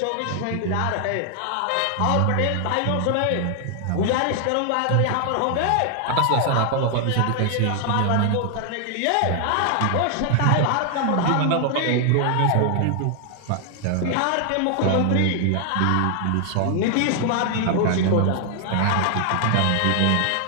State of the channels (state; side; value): different; both; correlation 0.00